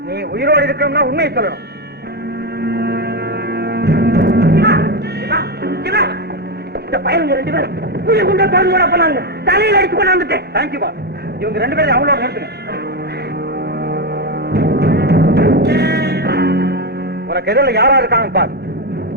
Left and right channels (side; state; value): both; normal; correlation 0.10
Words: நீ உயிரோடு இருக்கணும்னா உண்மையை சொல்லணும். இந்த பையனுங்க 2 பேரும் புள்ளி குண்ட திறந்து விட போனாங்க. தலையில் அடிச்சு கொண்டாந்துட்டேன். தேங்க்யூ பா. இவங்க 2 பேரும் அவங்களோட நிறுத்துங்க. உனக்கு எதிரில் யாரா இருக்காங்க பாரு.